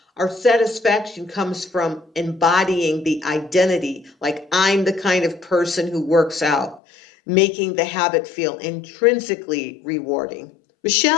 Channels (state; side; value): drops out; right; at 6.8 s